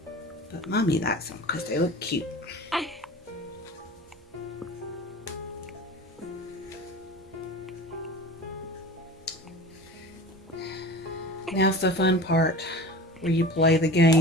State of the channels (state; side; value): normal; both; correlation 0.36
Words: Mommy likes them because they look cute. Now's the fun part where you play the